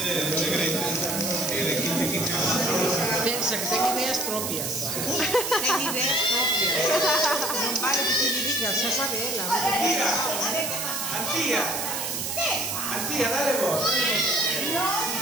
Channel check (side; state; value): right; noise; hiss, 3 dB below the sound